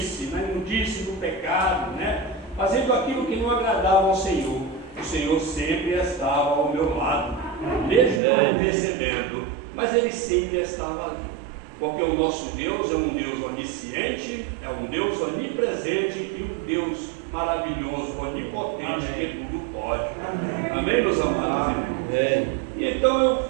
na imundice do pecado, né? Fazendo aquilo que não agradava ao Senhor, o Senhor sempre estava ao meu lado, mesmo não percebendo, mas Ele sempre estava ali, porque o nosso Deus é um Deus onisciente, é um Deus onipresente e um Deus maravilhoso, onipotente, que tudo pode. Amém, meus amados irmãos? E então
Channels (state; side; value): drops out; left; at 8.2 s